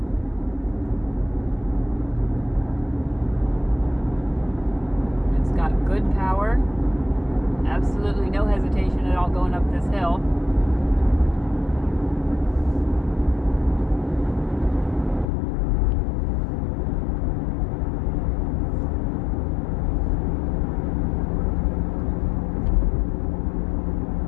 It's got good power. Absolutely no hesitation at all going up this hill.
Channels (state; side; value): drops out; right; at 15.3 s